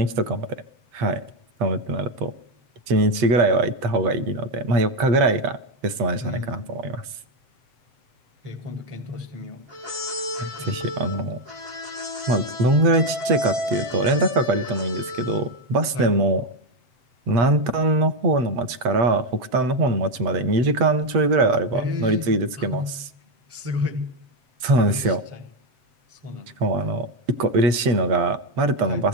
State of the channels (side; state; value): left; late; 7.8 ms